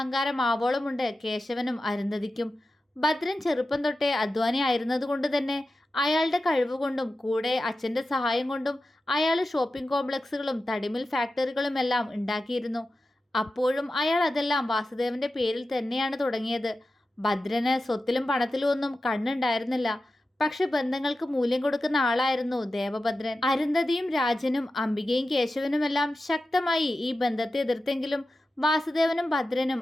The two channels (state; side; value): normal; both; correlation 0.92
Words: ആവോളമുണ്ട് കേശവനും അരുന്ധതിക്കും. ഭദ്രൻ ചെറുപ്പം തൊട്ടേ അധ്വാനി ആയിരുന്നതുകൊണ്ട് തന്നെ അയാളുടെ കഴിവുകൊണ്ടും കൂടെ അച്ഛൻ്റെ സഹായം കൊണ്ടും അയാൾ ഷോപ്പിംഗ് കോംപ്ലക്സുകളും തടിമിൽ ഫാക്ടറികളുമെല്ലാം ഉണ്ടാക്കിയിരുന്നു. അപ്പോഴും അയാൾ അതെല്ലാം വാസുദേവന്റെ പേരിൽ തന്നെയാണ് തുടങ്ങിയത്. ഭദ്രന് സ്വത്തിലും പണത്തിലും ഒന്നും കണ്ണുണ്ടായിരുന്നില്ല. പക്ഷെ ബന്ധങ്ങൾക്ക് മൂല്യം കൊടുക്കുന്ന ആളായിരുന്നു ദേവഭദ്രൻ. അരുന്ധതിയും രാജനും അംബികയും കേശവനുമെല്ലാം ശക്തമായി ഈ ബന്ധത്തെ എതിർത്തെങ്കിലും വാസുദേവനും ഭദ്രനും